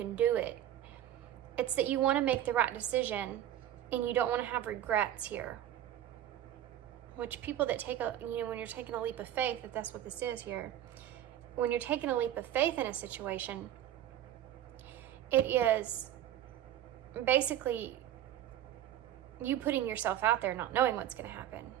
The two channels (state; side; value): quieter; left; 11.8 dB